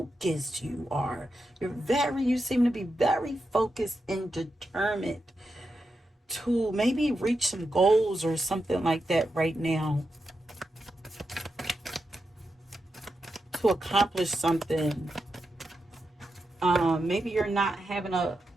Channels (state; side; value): normal; both; correlation 0.88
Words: you are. You seem to be very focused and determined to maybe reach some goals or something like that right now, to accomplish something. Maybe you're not